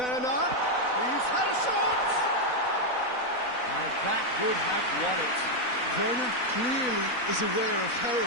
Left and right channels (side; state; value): right; late; 4.0 ms